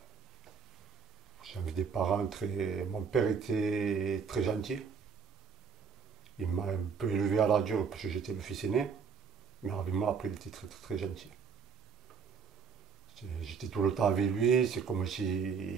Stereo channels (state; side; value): quieter; left; 6.3 dB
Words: J'avais des parents très... Mon père était très gentil, il m'a un peu élevé à la dure parce que j'étais le fils aîné. Mais avec moi, après, il était très, très, très gentil. J'étais tout le temps avec lui, c'est comme